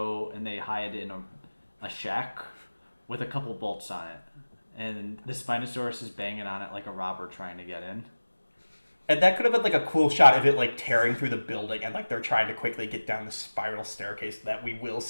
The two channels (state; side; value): inverted; both; correlation -1.00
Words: and they hide in a shack with a couple bolts on it. And the Spinosaurus is banging on it like a robber trying to get in. And that could have been like a cool shot of it like tearing through the building and like they're trying to quickly get down the spiral staircase that we will